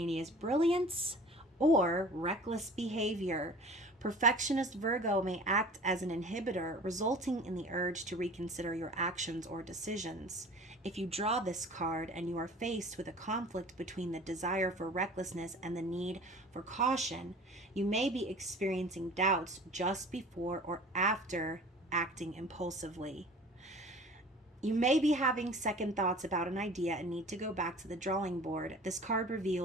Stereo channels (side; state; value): both; normal; correlation 0.43